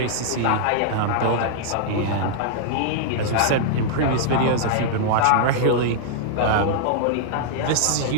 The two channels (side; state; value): both; different; correlation -0.01